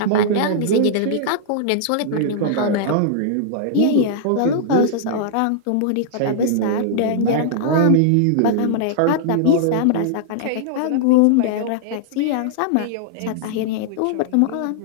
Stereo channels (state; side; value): different; both; correlation -0.01